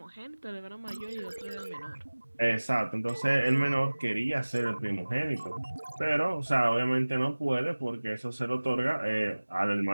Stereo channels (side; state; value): both; inverted; correlation -1.00